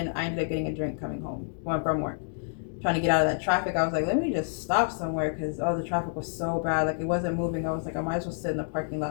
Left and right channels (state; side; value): silent; right; digital silence